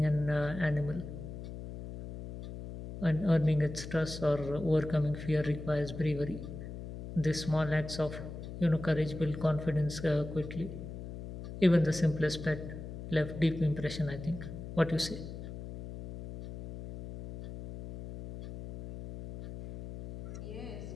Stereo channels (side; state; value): left; noise; hum, 10 dB below the sound